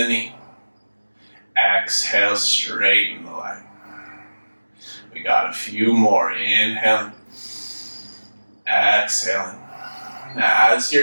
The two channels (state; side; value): inverted; both; correlation -1.00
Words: knee. Exhale, straighten the leg. We got a few more. Inhaling. Exhaling. Now, as